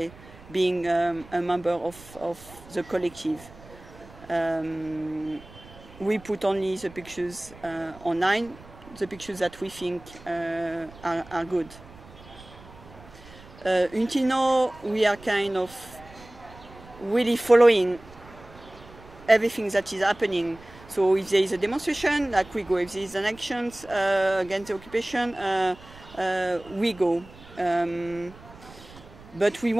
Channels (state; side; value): noise; right; rumble, 20 dB below the sound